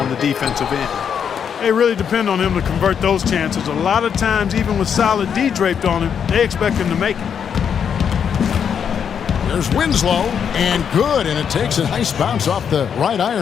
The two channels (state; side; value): quieter; right; 7.6 dB